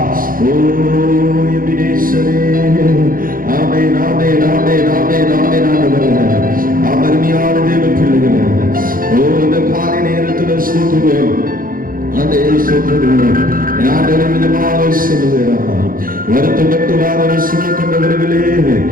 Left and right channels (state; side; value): late; left; 0.41 ms